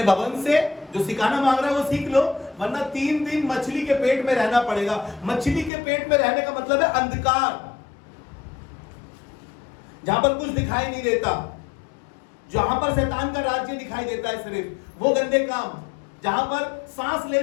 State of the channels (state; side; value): drops out; right; at 5.7 s